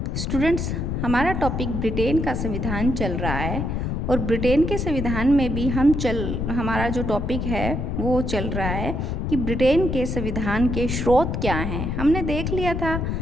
स्टूडेंट्स, हमारा टॉपिक ब्रिटेन का संविधान चल रहा है और ब्रिटेन के संविधान में भी हमारा जो टॉपिक है वो चल रहा है कि ब्रिटेन के संविधान के स्रोत क्या हैं। हमने देख लिया था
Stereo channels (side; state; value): left; noise; rumble, 1 dB below the sound